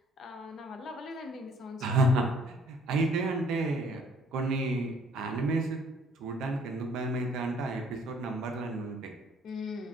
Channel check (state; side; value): normal; both; correlation 0.60